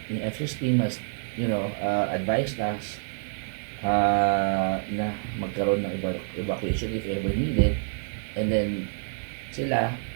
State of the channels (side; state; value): left; silent; 60 dB below the other